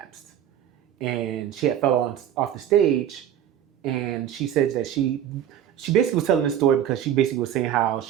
And she had fell off the stage. And she said that she basically was telling this story because she basically was saying how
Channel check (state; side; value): quieter; left; 10.4 dB